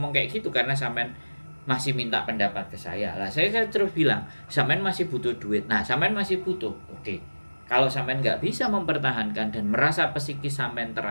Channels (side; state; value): both; inverted; correlation -1.00